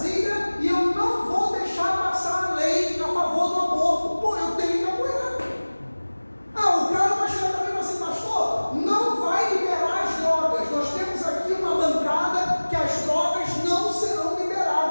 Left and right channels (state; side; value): inverted; both; correlation -1.00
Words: e eu não vou deixar passar a lei a favor do aborto, pô, eu tenho que apoiar. O cara vai chegar para mim e falar assim, pastor, não vai liberar as drogas. Nós temos aqui uma bancada que as drogas não serão